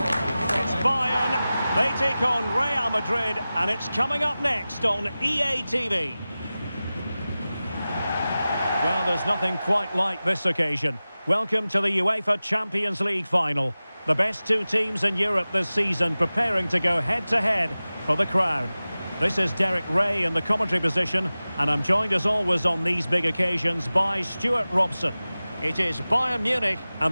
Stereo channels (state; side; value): inverted; both; correlation -0.97